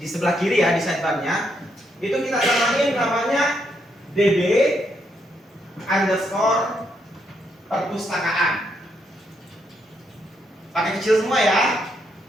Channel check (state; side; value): normal; both; correlation 0.77